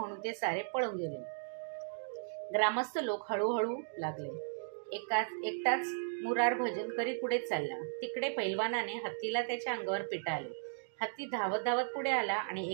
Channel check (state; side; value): silent; left; digital silence